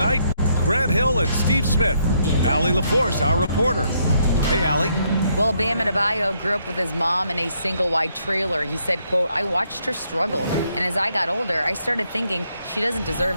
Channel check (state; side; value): inverted; both; correlation -0.73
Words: Grant Hill and Steve Smith. Allie LaForce, our reporter. Hey, Allie. Well, Bam Adebayo grew up with his mom in a single-wide trailer. He said, quote, "I watched her struggle, and as I got older, I started thinking she doesn't deserve